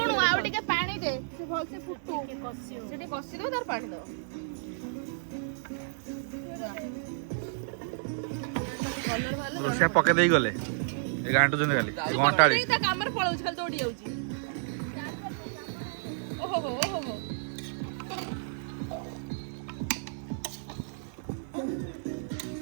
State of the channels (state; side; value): silent; left; 57 dB below the other